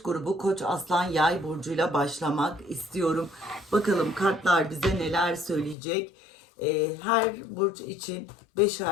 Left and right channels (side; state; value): right; drops out; at 5.8 s